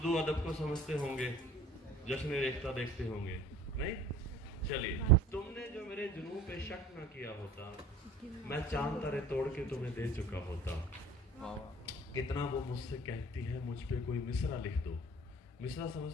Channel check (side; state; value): both; normal; correlation 0.47